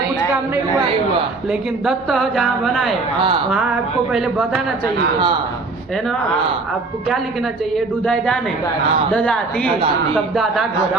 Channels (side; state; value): left; quieter; 3.7 dB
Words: काम नहीं नहीं हुआ, हुआ। लेकिन दत्त जहाँ बनाए हाँ। वहाँ आपको पहले बताना चाहिए, हाँ। है ना। हाँ। आपको क्या लिखना चाहिए, डुदाई दाने, हाँ। ददाती, ददाती। तब दादा गोदा,